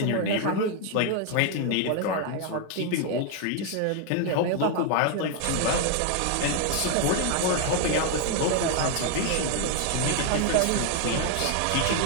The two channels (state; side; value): different; both; correlation 0.00